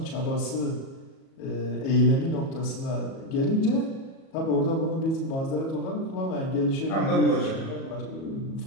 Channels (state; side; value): late; right; 37 ms